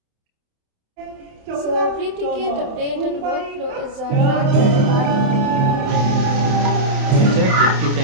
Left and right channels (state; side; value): late; left; 28 ms